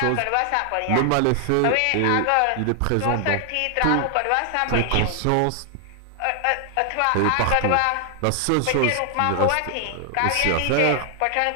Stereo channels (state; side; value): different; both; correlation 0.00